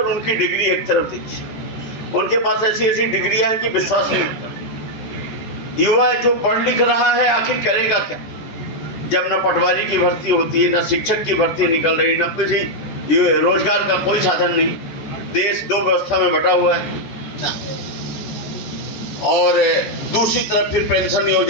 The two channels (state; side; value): late; right; 14 ms